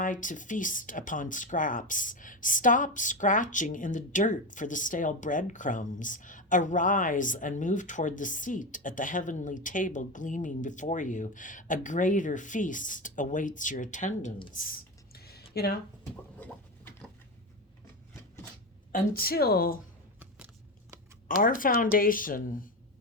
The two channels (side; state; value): both; normal; correlation 0.17